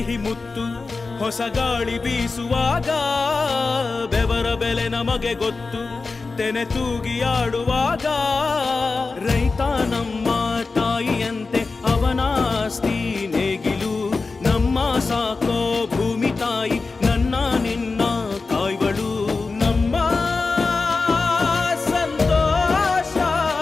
ಮುತ್ತು ಹೊಸ ಗಾಳಿ ಬೀಸುವಾಗ ಬೆವರ ಬೆಲೆ ನಮಗೆ ಗೊತ್ತು ತೆನೆ ತೂಗಿ ಆಡುವಾಗ ರೈತ ನಮ್ಮ ತಾಯಿಯಂತೆ ಅವನಾಸ್ತಿ ನೇಗಿಲು ನಮ್ಮ ಸಾಕೋ ಭೂಮಿ ತಾಯಿ ನನ್ನ ನಿನ್ನ ಕಾಯ್ವಳು ನಮ್ಮ ಸಂತೋಷ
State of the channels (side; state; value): right; quieter; 4.0 dB